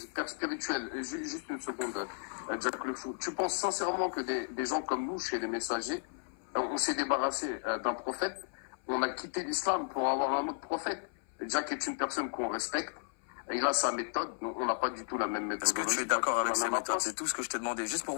père spirituel, juste une seconde, Jack le Fou. Tu penses sincèrement que des gens comme nous, chez les messagers, on s'est débarrassé d'un prophète, on a quitté l'islam pour avoir un autre prophète? Jack est une personne qu'on respecte, il a sa méthode, on n'a pas du tout la même méthode. Est-ce que tu es d'accord avec ses méthodes? C'est tout ce que je t'ai demandé, juste pour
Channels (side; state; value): right; silent; 55 dB below the other